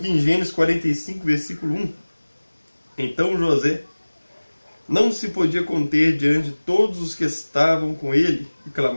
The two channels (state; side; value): inverted; both; correlation -1.00